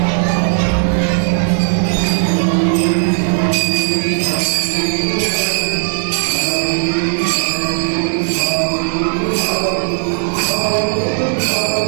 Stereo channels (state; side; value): silent; left; digital silence